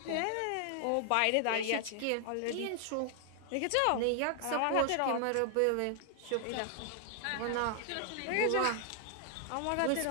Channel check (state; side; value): different; both; correlation 0.00